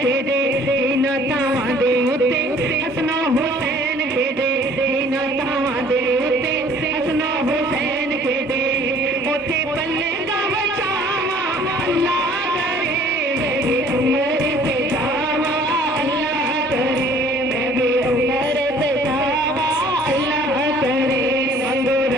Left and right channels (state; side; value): normal; both; correlation 0.54